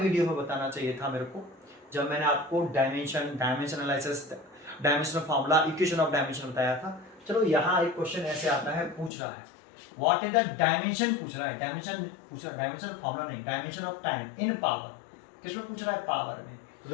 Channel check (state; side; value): drops out; right; at 9.1 s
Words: में बताना चाहिए था मेरे को, जब मैंने आपको dimension analysis, dimensional formula, equation of dimension बताया था। चलो यहाँ एक क्वेश्चन ऐसे आता है, पूछ रहा है व्हाट इज द डायमेंशन, पूछ रहा है डायमेंशन फार्मूला नहीं, dimension of time in power, किसमें पूछ रहा है, पावर में। तो